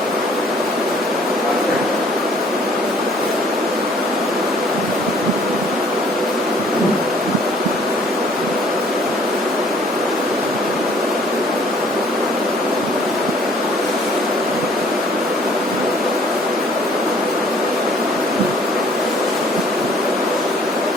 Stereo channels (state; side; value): normal; both; correlation 0.57